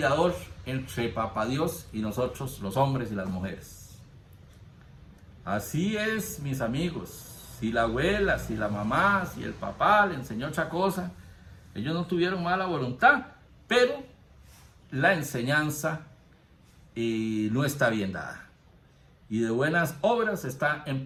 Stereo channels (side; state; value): both; identical; correlation 1.00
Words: entre Papá Dios y nosotros, los hombres y las mujeres. Así es, mis amigos. Si la abuela, si la mamá, si el papá le enseñó otra cosa, ellos no tuvieron mala voluntad, pero la enseñanza no está bien dada. Y de buenas obras está